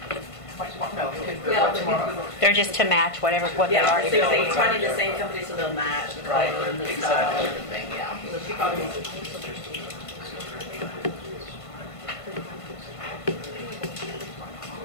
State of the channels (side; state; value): right; late; 1.5 ms